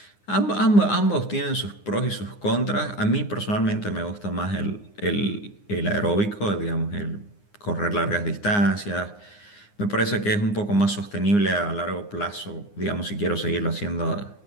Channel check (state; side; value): late; right; 9.7 ms